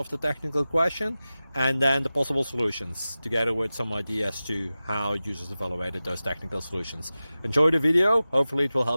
the technical question and then the possible solutions, together with some ideas to how users evaluated those technical solutions. Enjoy the video, hopefully it will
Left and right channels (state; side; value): inverted; both; correlation -0.95